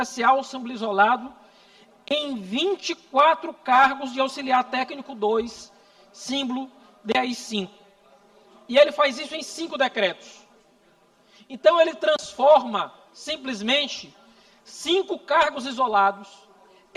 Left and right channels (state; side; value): identical; both; correlation 1.00